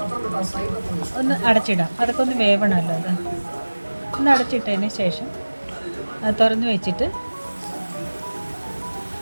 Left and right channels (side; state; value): both; inverted; correlation -1.00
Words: ഒന്ന് അടച്ചിടാം. അതൊക്കെ ഒന്ന് വേവണമല്ലോ. അത് ഒന്ന് അടച്ചിട്ടതിന് ശേഷം അത് തുറന്ന് വെച്ചിട്ട്